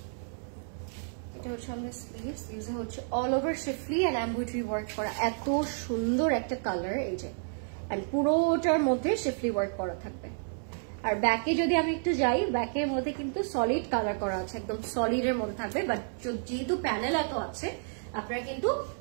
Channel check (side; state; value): left; silent; 57 dB below the other